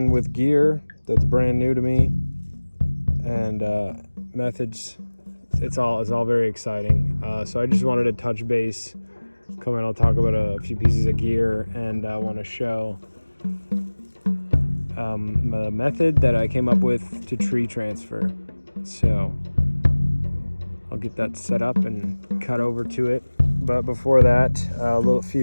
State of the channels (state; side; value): inverted; both; correlation -1.00